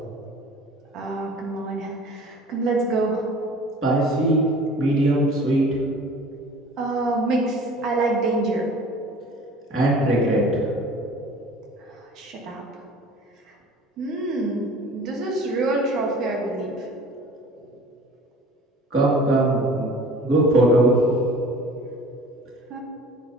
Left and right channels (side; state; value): both; normal; correlation 0.45